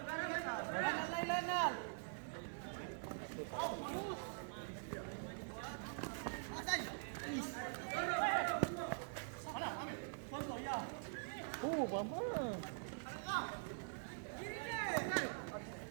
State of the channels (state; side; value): silent; left; digital silence